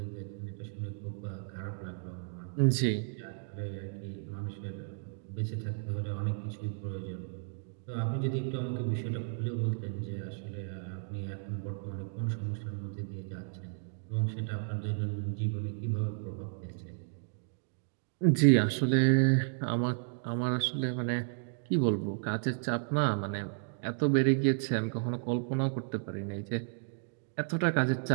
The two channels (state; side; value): silent; left; digital silence